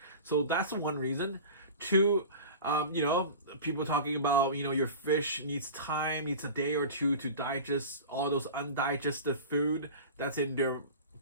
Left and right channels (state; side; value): inverted; both; correlation -0.34